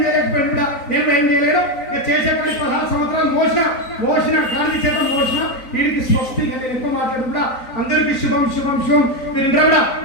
చేయలేకపోయాడు కూడా. నేను ఏం చేయలేను. చేసే పని 16 సంవత్సరాలు మోసిన గాంధీ చేత మోసిన వీడికి స్వస్తి. నేను ఎక్కువ మాట్లాడు కూడా అందరికీ శుభం శుభం శుభం. మీరు ఇంట్లో కూడా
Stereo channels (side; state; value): right; late; 3.9 ms